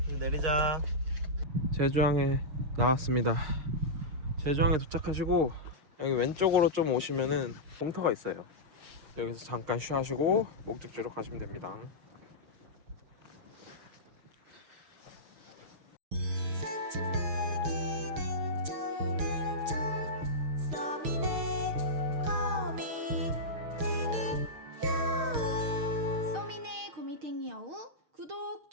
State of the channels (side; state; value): left; late; 6.4 ms